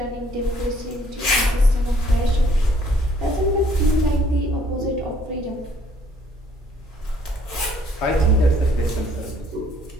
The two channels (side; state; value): both; normal; correlation 0.62